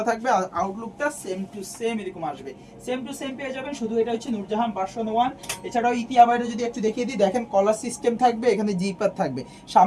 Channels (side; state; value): both; identical; correlation 1.00